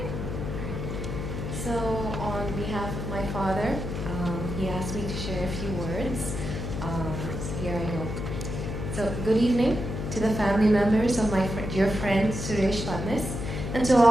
So, on behalf of my father, he asked me to share a few words. So here I go. So, good evening to the family members of my dear friend Suresh Phadnis, and to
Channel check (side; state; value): left; noise; hum, 5 dB below the sound